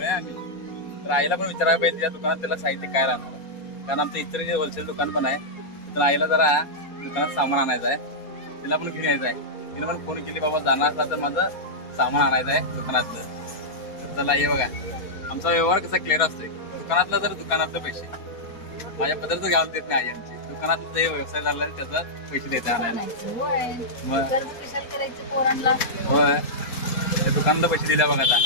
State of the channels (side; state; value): right; late; 4.2 ms